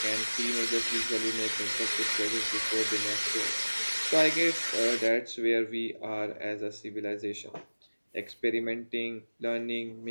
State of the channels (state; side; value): inverted; both; correlation -1.00